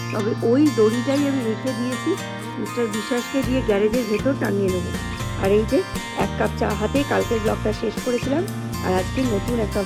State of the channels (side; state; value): both; identical; correlation 1.00